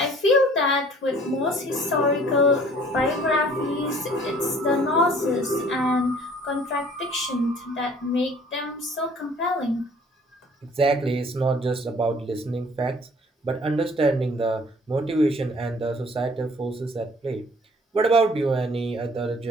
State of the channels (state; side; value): normal; both; correlation 0.54